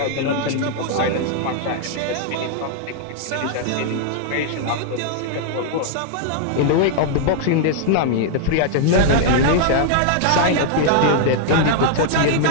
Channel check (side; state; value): both; different; correlation -0.01